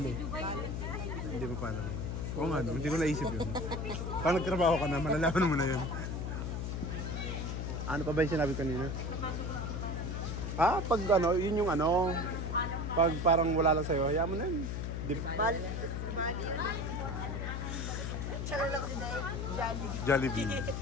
Hindi mo pa alam. Oo nga, no? Hindi ko naisip yun. Pag nagtrabaho ka na, malalaman mo na yun. Ano pa ba yung sinabi kanina? Pag ano, yun yung ano, pag parang wala lang sa'yo, hayaan mo na yun. Bali. Jollibee.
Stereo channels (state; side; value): noise; left; hum, 3 dB below the sound